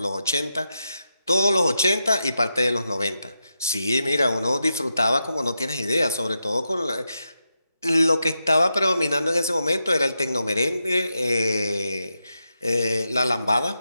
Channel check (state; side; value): inverted; both; correlation -0.87